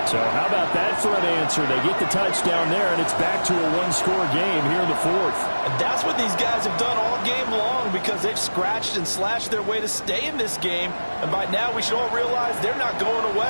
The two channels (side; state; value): both; inverted; correlation -1.00